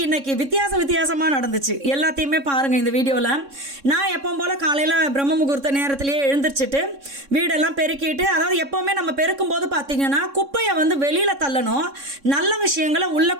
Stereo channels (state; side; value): late; left; 3.6 ms